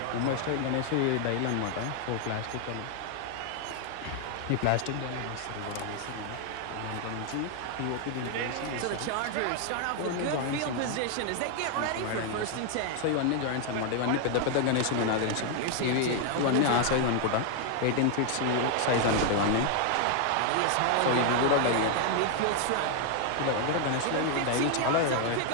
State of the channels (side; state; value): both; different; correlation 0.00